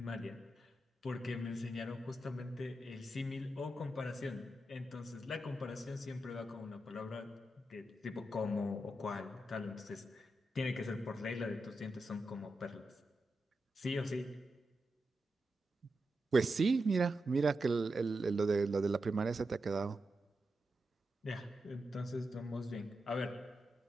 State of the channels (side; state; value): both; normal; correlation 0.88